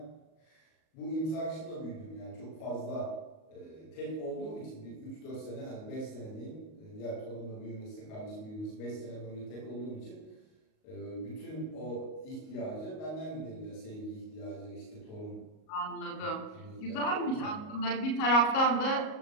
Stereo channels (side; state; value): right; late; 38 ms